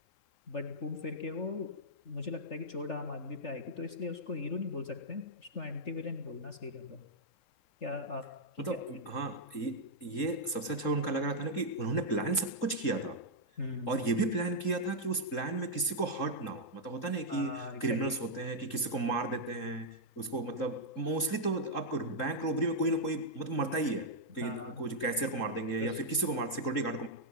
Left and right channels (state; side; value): late; right; 3.7 ms